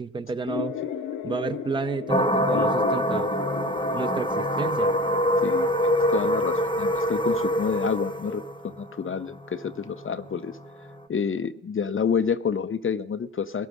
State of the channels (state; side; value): normal; both; correlation 0.36